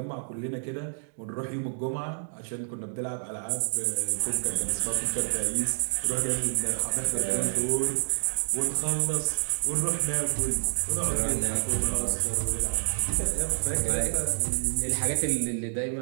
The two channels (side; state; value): left; silent; digital silence